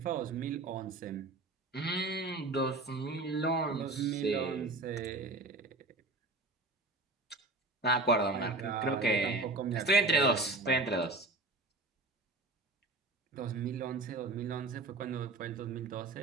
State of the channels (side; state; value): left; quieter; 3.1 dB